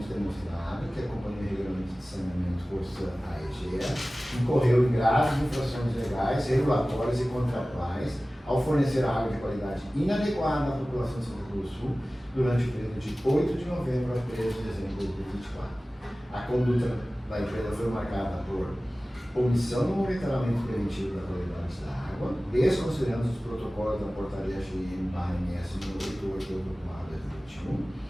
demonstrado que a Companhia Regulamento de Saneamento Corsã AEGE incorreu em graves infrações legais, regulatórias e contratuais ao fornecer água de qualidade inadequada à população de Santa Cruz do Sul durante o período de 8 de novembro a 13 de dezembro de 2024. A conduta da empresa foi marcada por omissão no monitoramento preventivo da qualidade da água, desconsiderando os protocolos da portaria GM/MS número 88/2021,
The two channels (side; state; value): both; normal; correlation 0.97